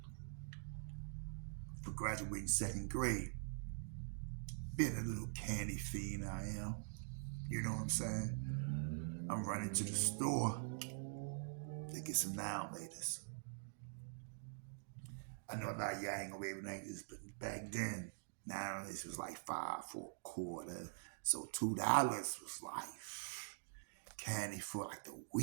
for graduating second grade. Being a little candy fiend I am, you know what I'm saying? I'm running to the store to get some now latest. I know a lot of y'all ain't gonna be able to like this, but back then, now this was like 5 for a quarter. So $2 was like candy for like the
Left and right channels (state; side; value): silent; left; digital silence